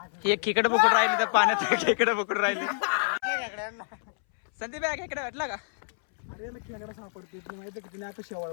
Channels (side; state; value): right; silent; 59 dB below the other